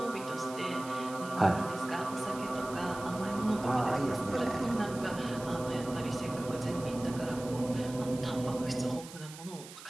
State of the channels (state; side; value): noise; right; hiss, 15 dB below the sound